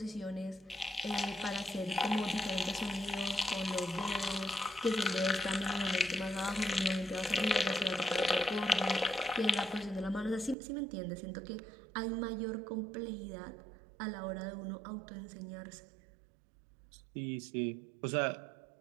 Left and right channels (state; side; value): drops out; left; at 10.6 s